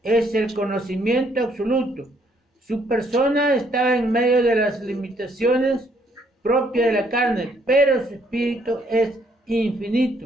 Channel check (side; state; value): both; normal; correlation 0.68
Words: es el conocimiento absoluto. Su persona estaba en medio de las limitaciones propias de la carne, pero su espíritu es